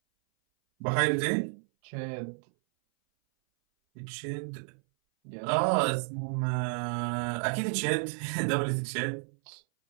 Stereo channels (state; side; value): silent; left; 57 dB below the other